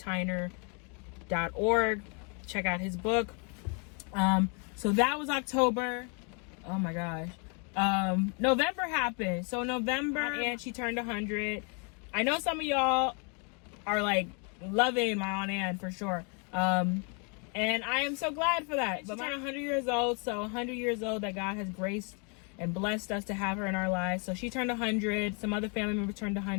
Check out his book. So that was October. Oh my gosh. November happened. So November, and she turned 100. I know some of y'all are like loving my Aunt Ann for sure. And I am so glad for that. But I'm 100 years old, so 100 years old that God has graced and blessed us to have her in our lives. So she turned 100. Some other family members turned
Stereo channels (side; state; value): right; quieter; 36.2 dB